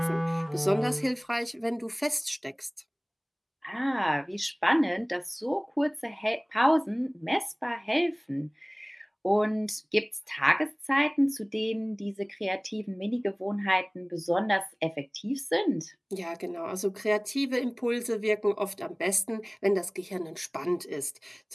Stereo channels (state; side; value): identical; both; correlation 1.00